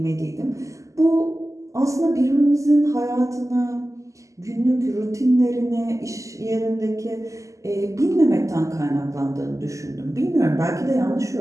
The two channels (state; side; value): late; left; 0.16 ms